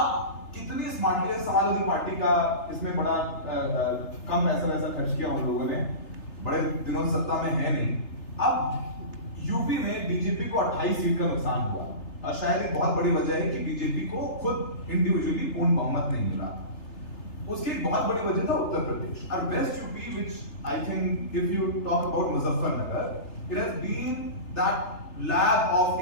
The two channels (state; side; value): late; right; 3.3 ms